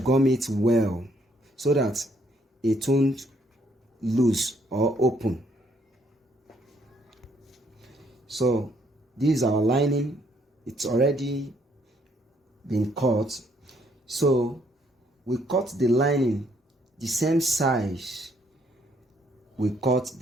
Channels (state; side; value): normal; both; correlation 0.69